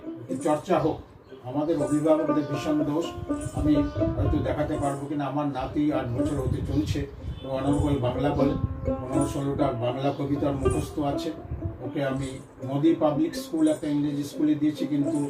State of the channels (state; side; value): identical; both; correlation 1.00